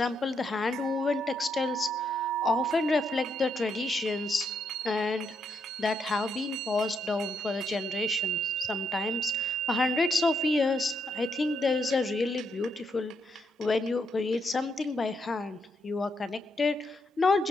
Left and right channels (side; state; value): both; normal; correlation 0.78